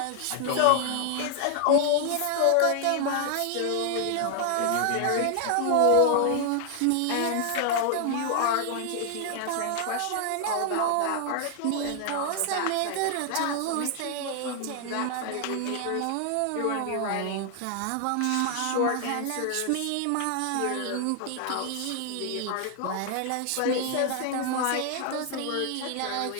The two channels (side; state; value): both; different; correlation 0.00